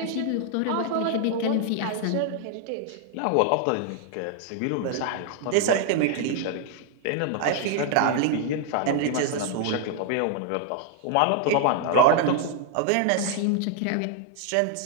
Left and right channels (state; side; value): different; both; correlation 0.00